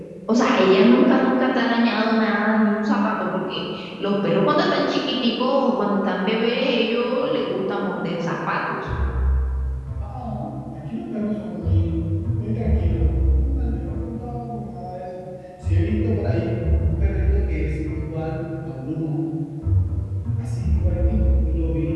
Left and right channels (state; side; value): identical; both; correlation 1.00